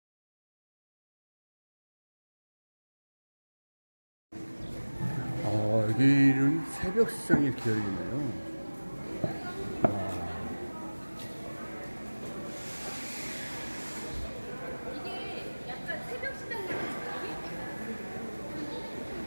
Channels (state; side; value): inverted; both; correlation -1.00